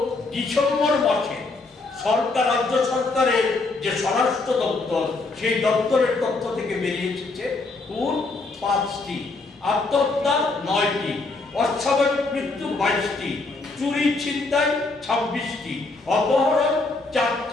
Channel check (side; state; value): right; quieter; 3.5 dB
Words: ডিসেম্বর মাসে সরকার, রাজ্য সরকারের যে স্বরাষ্ট্র দপ্তর, সেই দপ্তরের তথ্য থেকে বেরিয়ে এসেছে খুন 5টি, আত্মহত্যা 9টি, অস্বাভাবিক মৃত্যু 22টি, চুরি ছিনতাই 26টি, অপহরণ